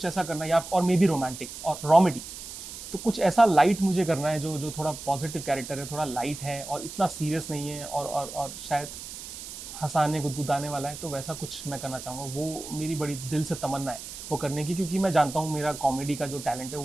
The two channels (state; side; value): noise; right; hiss, 11 dB below the sound